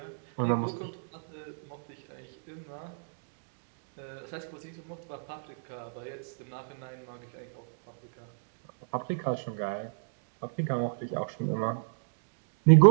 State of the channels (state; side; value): silent; left; digital silence